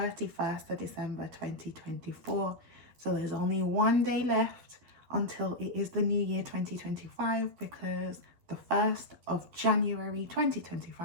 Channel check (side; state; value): left; late; 12 ms